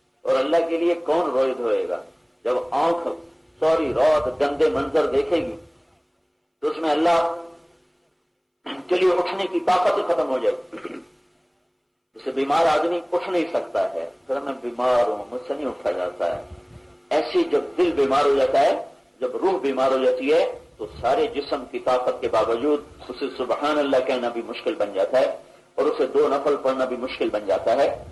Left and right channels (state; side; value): identical; both; correlation 1.00